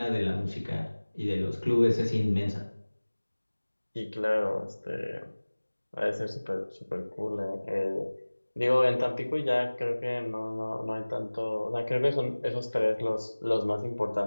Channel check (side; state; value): both; inverted; correlation -1.00